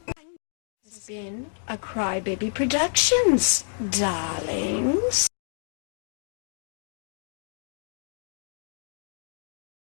This has been a Crybaby Productions, darlings.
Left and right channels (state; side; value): silent; right; digital silence